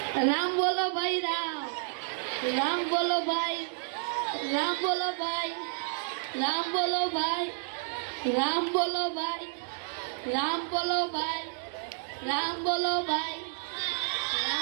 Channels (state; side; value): silent; left; digital silence